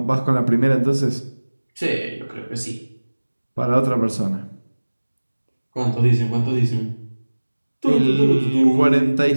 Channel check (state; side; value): inverted; both; correlation -1.00